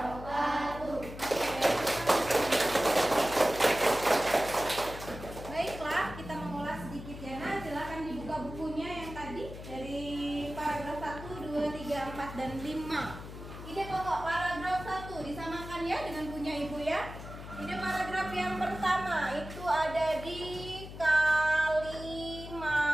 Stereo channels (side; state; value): left; noise; hum, 12 dB below the sound